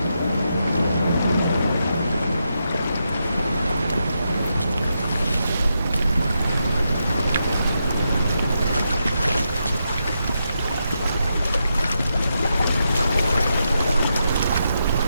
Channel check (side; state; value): both; inverted; correlation -0.84